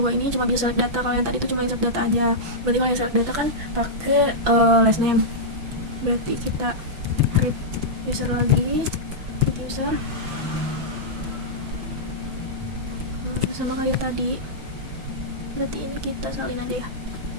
ini cuma bisa select data. Kalau yang tadi itu cuma insert data aja. Berarti kalau yang select data kan pakai last name. Berarti kita create user lagi, create user. Sama kayak tadi. Berarti ini kita salin aja ya.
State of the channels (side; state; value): left; late; 6.0 ms